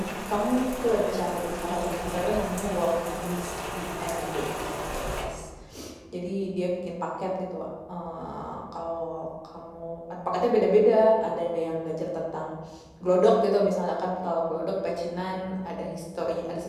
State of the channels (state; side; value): identical; both; correlation 1.00